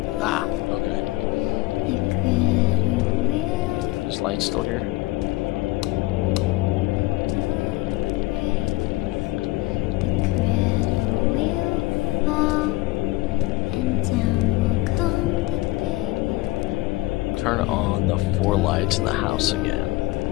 Ah, okay. Is light still here? Turn on the 4 lights in the house again.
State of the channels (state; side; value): quieter; right; 20.1 dB